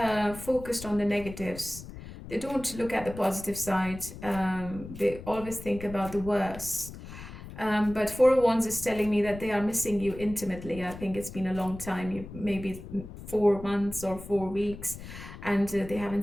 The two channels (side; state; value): left; noise; rumble, 13 dB below the sound